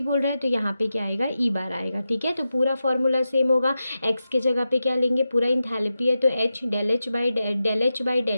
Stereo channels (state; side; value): inverted; both; correlation -0.91